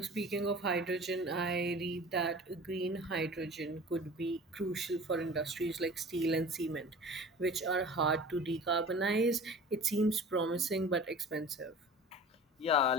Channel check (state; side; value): normal; both; correlation 0.40